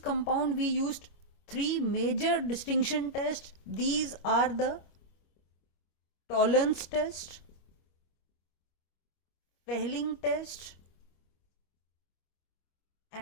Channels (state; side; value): late; right; 25 ms